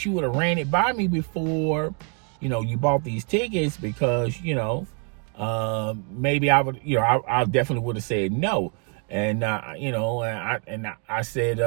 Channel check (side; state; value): left; quieter; 39.1 dB